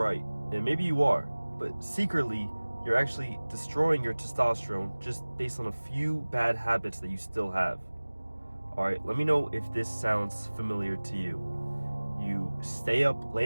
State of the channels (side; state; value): both; inverted; correlation -1.00